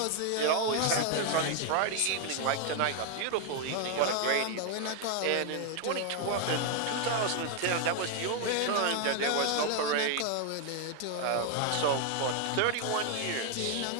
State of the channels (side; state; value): both; different; correlation 0.00